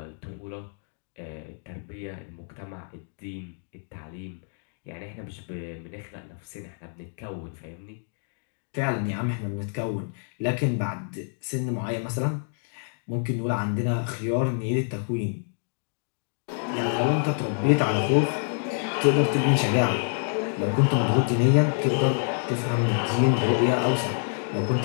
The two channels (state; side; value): silent; right; 60 dB below the other